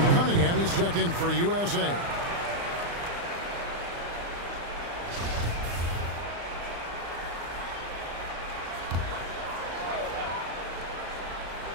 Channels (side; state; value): left; late; 35 ms